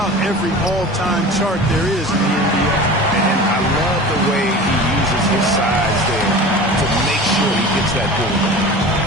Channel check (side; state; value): both; normal; correlation 0.36